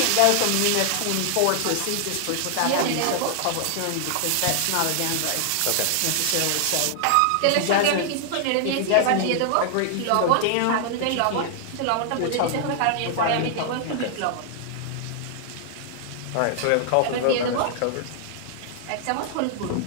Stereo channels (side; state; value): both; different; correlation -0.01